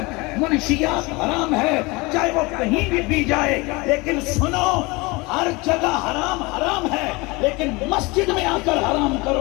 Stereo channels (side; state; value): right; quieter; 24.8 dB